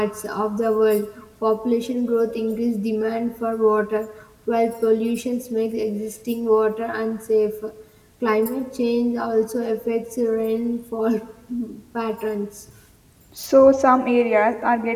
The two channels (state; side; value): identical; both; correlation 1.00